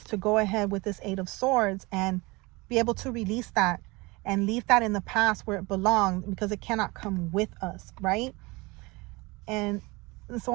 to go ahead with this 8 of Swords and be able to release that and leave that in the past where it belonged, because it cannot come with us, right? And it's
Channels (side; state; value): left; quieter; 24.3 dB